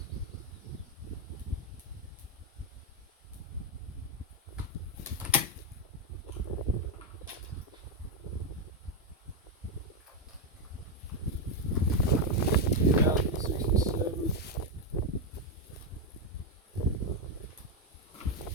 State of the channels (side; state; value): both; normal; correlation 0.04